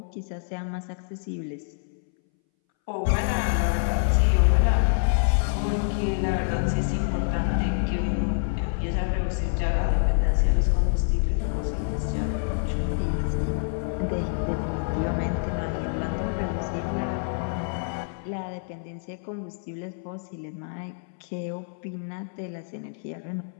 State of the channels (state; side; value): silent; right; 60 dB below the other